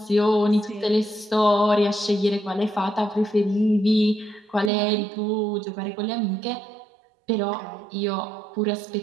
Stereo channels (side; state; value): left; drops out; at 4.7 s